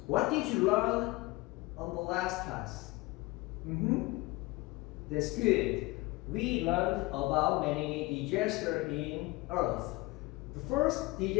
what did you learn on the last class? That's good. We learned about many disasters in Earth. The first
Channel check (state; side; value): quieter; right; 22.1 dB